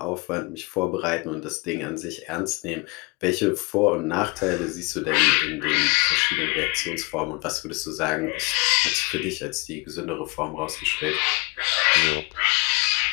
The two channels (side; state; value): right; quieter; 28.2 dB